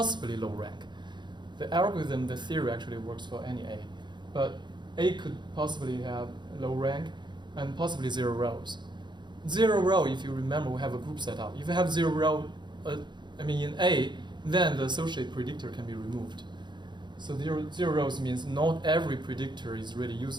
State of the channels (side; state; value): left; late; 0.22 ms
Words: low rank. The algorithm, the theory actually works for any A. But A could possibly have low rank and possibly 0 rows. 0 row, if you remember, we have a group set up. If you have 0 row in A, then the associated predictor can be removed. So 0 rows means not every predictor is really